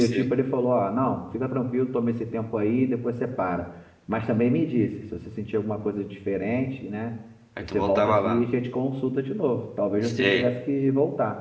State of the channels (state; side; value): identical; both; correlation 1.00